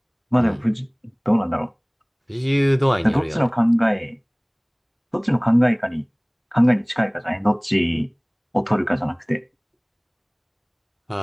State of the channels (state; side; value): identical; both; correlation 1.00